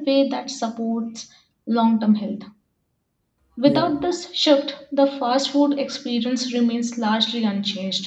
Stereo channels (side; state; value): both; identical; correlation 1.00